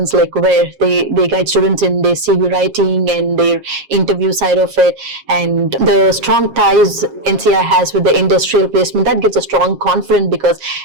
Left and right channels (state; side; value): late; left; 7.4 ms